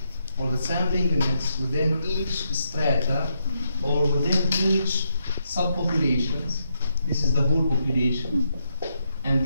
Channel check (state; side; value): inverted; both; correlation -0.80